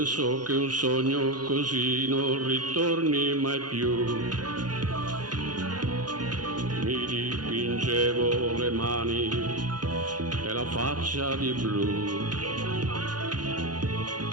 che un sogno così non ritorni mai più. Mi dipingevo le mani e la faccia di blu.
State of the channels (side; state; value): left; late; 0.70 ms